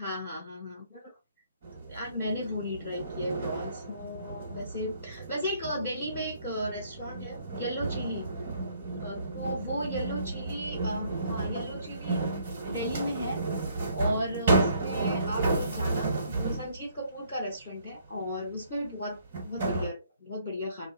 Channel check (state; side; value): inverted; both; correlation -0.64